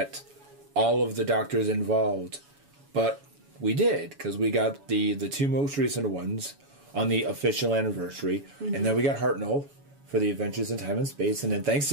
all of the Doctors involved. But we did, because we got the two most recent ones on the official anniversary. Mm-hmm. And then we got Hartnell for the Adventures in Time and Space. And then thanks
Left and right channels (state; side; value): late; left; 7.1 ms